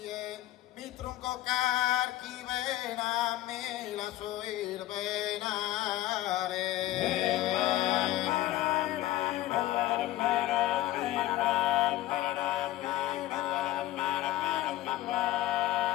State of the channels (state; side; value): quieter; right; 15.3 dB